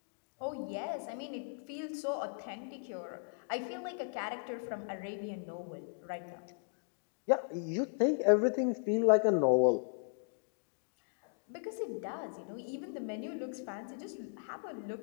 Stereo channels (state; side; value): silent; right; digital silence